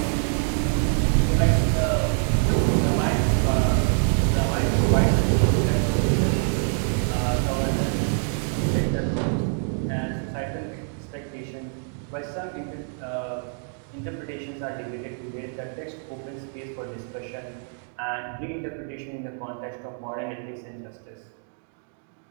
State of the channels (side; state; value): left; silent; 56 dB below the other